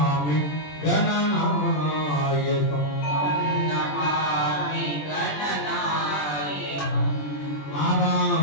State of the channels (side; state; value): right; late; 20 ms